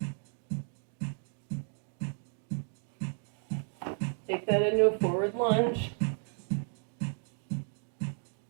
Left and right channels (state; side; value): silent; left; 55 dB below the other